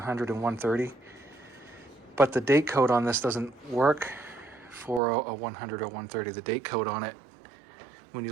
and 130. But the date code on this doesn't work for a 100 or 130. The date code on it, when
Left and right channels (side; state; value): left; drops out; at 5.0 s